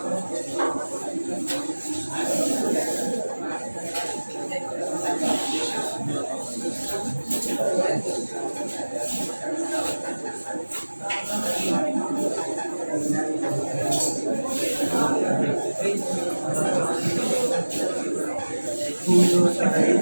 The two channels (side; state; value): both; inverted; correlation -1.00